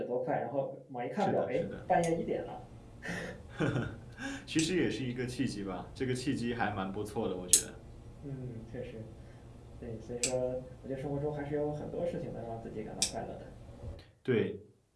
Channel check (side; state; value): both; identical; correlation 1.00